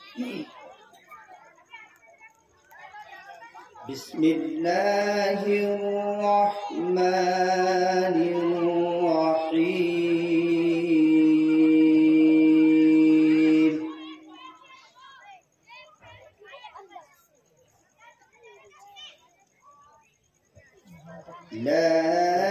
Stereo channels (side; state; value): both; identical; correlation 1.00